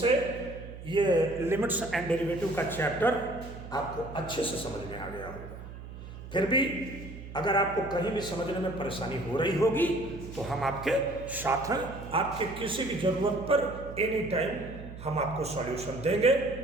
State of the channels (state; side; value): noise; right; hum, 12 dB below the sound